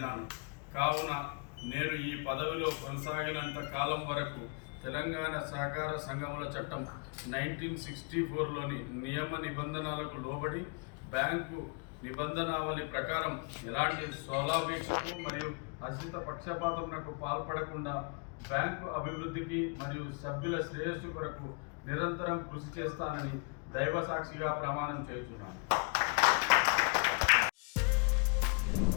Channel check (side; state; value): right; quieter; 35.4 dB